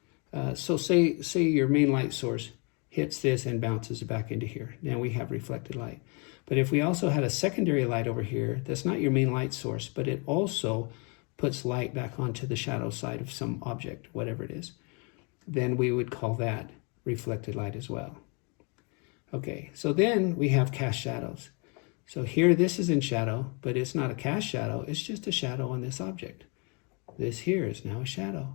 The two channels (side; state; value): right; quieter; 33.5 dB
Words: So say your main light source hits this and bounces back into here. Now we have reflected light. But if we also had a secondary light over here, that's not your main light source, but it also puts light back onto the shadow side of some object, whatever it is, then we would call that reflected light as well. Okay, so then we have cast shadows. So here this is in shadow, but it's not a cast shadow, it's just a shadow on this object. This here is now a shadow,